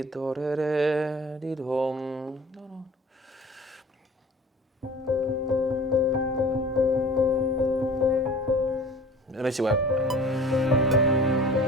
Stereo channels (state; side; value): normal; both; correlation 0.43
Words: Let me see what.